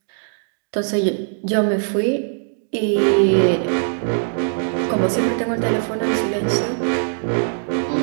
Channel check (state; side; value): silent; left; digital silence